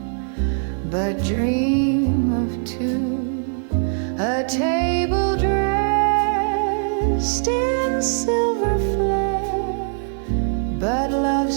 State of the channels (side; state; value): left; silent; digital silence